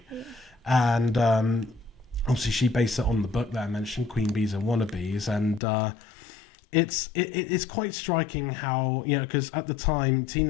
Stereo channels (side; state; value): right; drops out; at 5.6 s